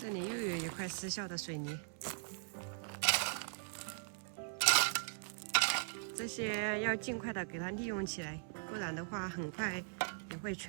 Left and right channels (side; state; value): left; silent; digital silence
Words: 这里又有一块失效的水泥，这些要尽快的给它利用起来，不然的话很快也会